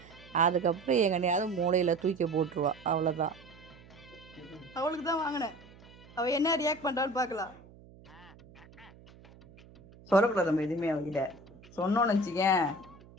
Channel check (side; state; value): right; noise; hum, 23 dB below the sound